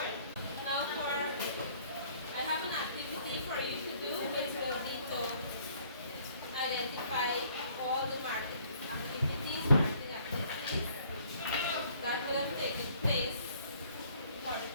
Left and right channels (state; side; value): inverted; both; correlation -0.59